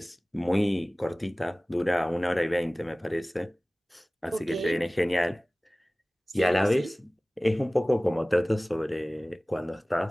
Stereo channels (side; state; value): both; normal; correlation 0.98